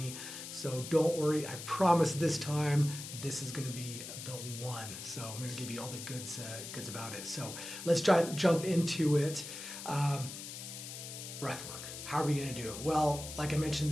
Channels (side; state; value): left; noise; hiss, 9 dB below the sound